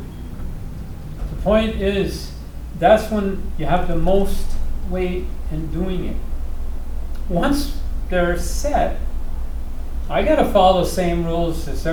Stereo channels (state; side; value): identical; both; correlation 1.00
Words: The point is, that's when you have the most weight in doing it. Once they're set, I gotta follow the same rules as